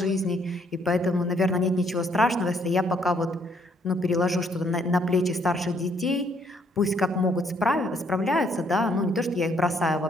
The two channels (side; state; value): both; normal; correlation 0.68